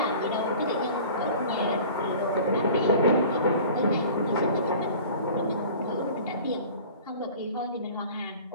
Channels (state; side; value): inverted; both; correlation -0.44